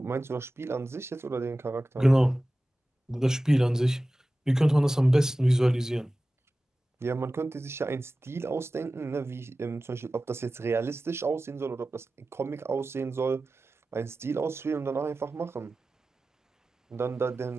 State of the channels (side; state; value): both; normal; correlation 0.95